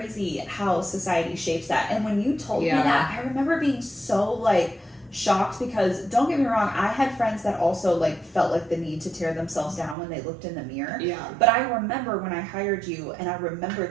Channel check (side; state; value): left; drops out; at 10.0 s